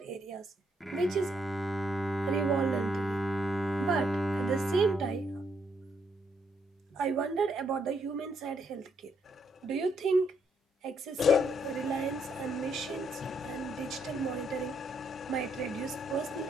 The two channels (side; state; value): both; normal; correlation 0.74